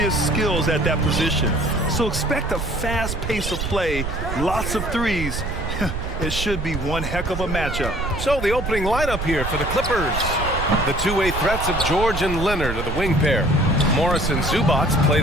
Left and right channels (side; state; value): right; noise; rumble, 5 dB below the sound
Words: skills at that position. So expect a fast pace of play, lots of threes. It should be one heck of a matchup. So the opening lineup here for the Clippers. The two-way threats of George and Leonard are the wing pair. Morris and Zubac play